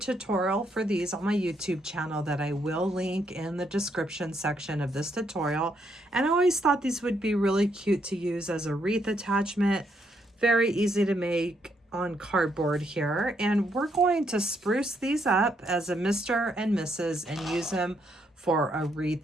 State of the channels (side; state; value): both; normal; correlation 0.75